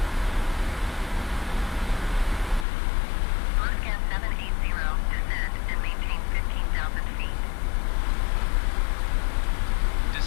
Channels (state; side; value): drops out; right; at 2.7 s